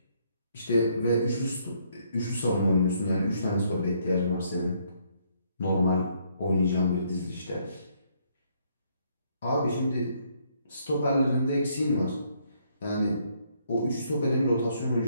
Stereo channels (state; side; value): inverted; both; correlation -0.70